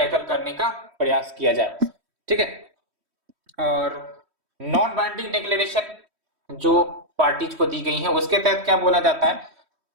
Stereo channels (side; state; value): left; late; 3.1 ms